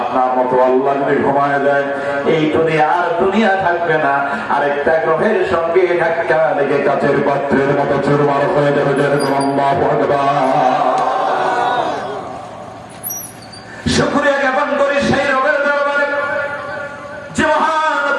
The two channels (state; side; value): identical; both; correlation 1.00